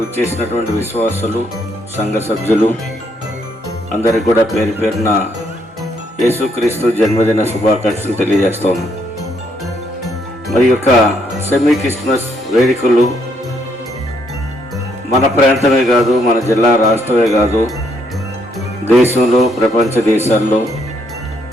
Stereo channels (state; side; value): normal; both; correlation 0.72